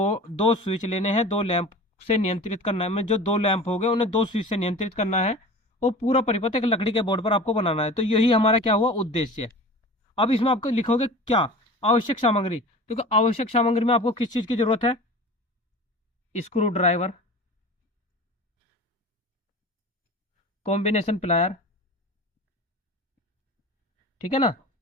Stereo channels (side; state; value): both; normal; correlation 0.37